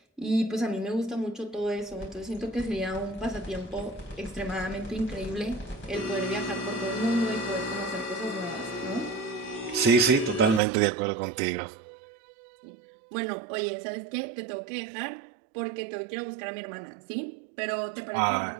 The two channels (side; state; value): left; drops out; at 10.6 s